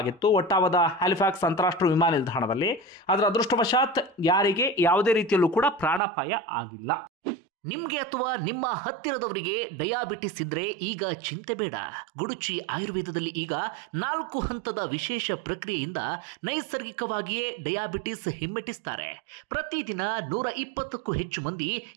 ಒಟ್ಟಾವದ ಹ್ಯಾಲಿಫ್ಯಾಕ್ಸ್ ಅಂತಾರಾಷ್ಟ್ರೀಯ ವಿಮಾನ ನಿಲ್ದಾಣದಲ್ಲಿ. ಅದರ ಅದೃಷ್ಟವಶಾತ್ ಯಾರಿಗೆ ಯಾವುದೇ ರೀತಿಯಲ್ಲೂ ಕೂಡ ಪ್ರಾಣಾಪಾಯ ಆಗಿಲ್ಲ. ನಿಮಗೆ ಅಥವಾ ನಿಮ್ಮ ಹತ್ತಿರದವರಿಗೆ ಡಯಾಬಿಟಿಸ್ ಇದ್ರೆ ಈಗ ಚಿಂತೆ ಬೇಡ. ಗುಡುಚಿ ಆಯುರ್ವೇದದಲ್ಲಿ ಈಗ 4 ಹಂತದ ವಿಶೇಷ ಪ್ರಕ್ರಿಯೆಯಿಂದ ನೈಸರ್ಗಿಕವಾಗಿಯೇ ಡಯಾಬಿಟಿಸ್ ಹಿಮ್ಮೆಟ್ಟಿಸ್ತಾರೆ. ಪ್ರತಿದಿನ 120ಕ್ಕೂ ಹೆಚ್ಚು ಮಂದಿ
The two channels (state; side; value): drops out; left; at 6.0 s